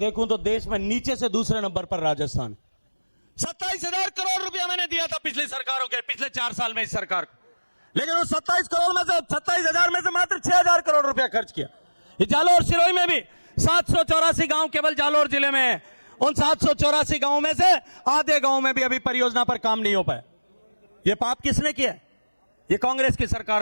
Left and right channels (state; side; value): inverted; both; correlation -1.00